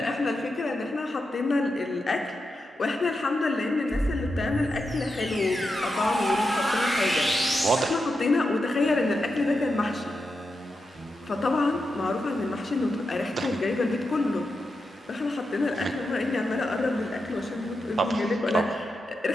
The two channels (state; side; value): normal; both; correlation 0.88